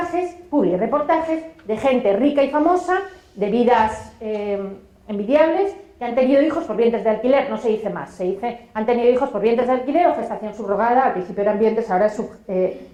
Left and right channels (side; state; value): both; identical; correlation 1.00